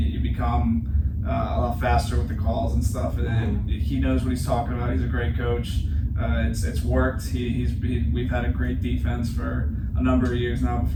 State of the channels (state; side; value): identical; both; correlation 1.00